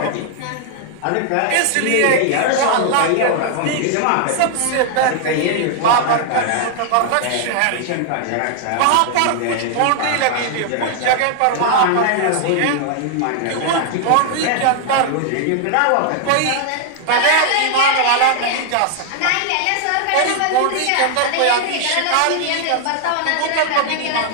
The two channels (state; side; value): different; both; correlation 0.00